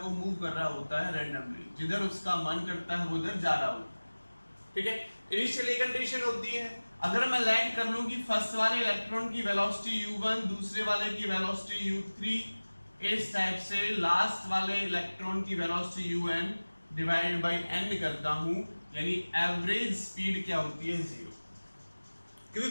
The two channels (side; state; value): both; inverted; correlation -1.00